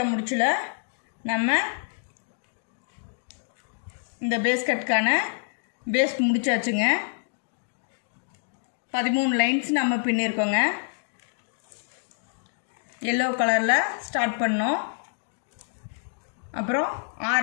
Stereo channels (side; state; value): right; silent; digital silence